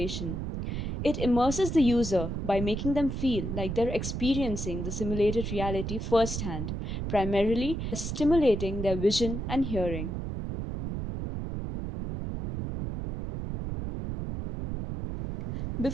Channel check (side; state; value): right; noise; rumble, 4 dB below the sound